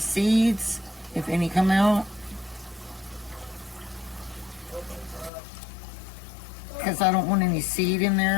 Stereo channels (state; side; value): drops out; right; at 5.3 s